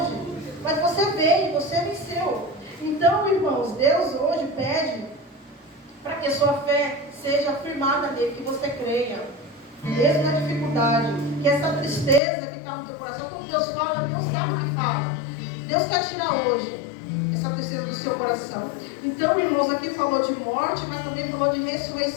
Mas você veio, você venceu. Então, irmãos, Deus hoje pede para que a sua fé seja firmada nele, que você creia. Mesmo na dificuldade, que essa tristeza que está no teu coração, quando Deus fala, Deus sabe o que fala. Deus quer tirar hoje essa tristeza do seu coração. Então, irmãos, aqui falou de morte, mas também falou de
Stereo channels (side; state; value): right; drops out; at 12.2 s